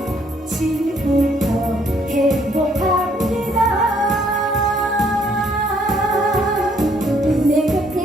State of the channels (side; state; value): both; normal; correlation 0.66